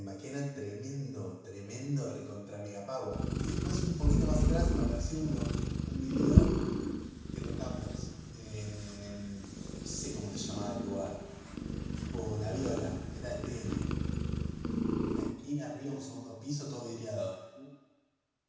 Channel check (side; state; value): both; identical; correlation 1.00